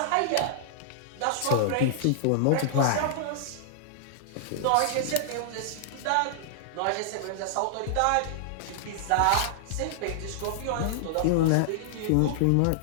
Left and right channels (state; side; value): different; both; correlation -0.01